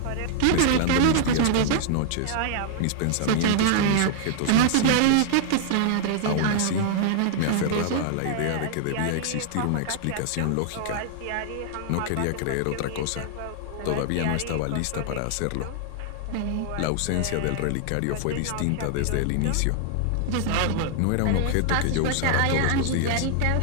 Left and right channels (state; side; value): different; both; correlation -0.01